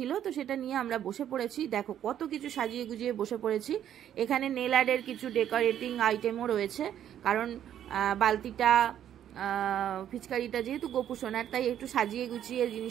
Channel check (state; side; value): quieter; left; 10.4 dB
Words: তো সেটা নিয়ে আমরা বসে পড়েছি। দেখো কত কিছু সাজিয়ে গুজিয়ে বসে পড়েছি। এখানে নেল আর্টের কিছু ডেকোরেটিং আইটেমও রয়েছে, কারণ বালতিটা ফিচকারিটা যেহেতু গোপু সোনার, তাই একটু সাজিয়ে গুছিয়ে